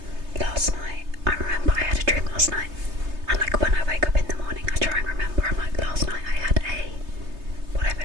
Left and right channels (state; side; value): late; left; 3.3 ms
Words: Last night, I remember I had a dream last night, and like when I wake up in the morning I try and remember, I'm like, last night I had a whatever